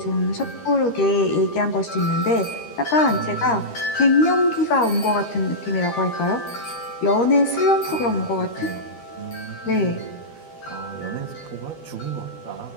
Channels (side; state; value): right; late; 13 ms